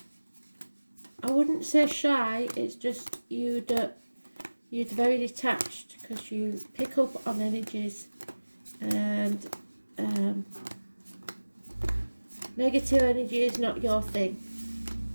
wouldn't say shy, it's just you're very detached because you pick up on energies. And negative energy is not your thing.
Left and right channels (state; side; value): inverted; both; correlation -1.00